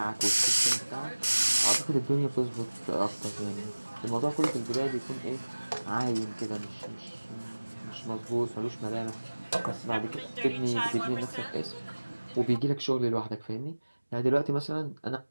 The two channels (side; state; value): both; inverted; correlation -1.00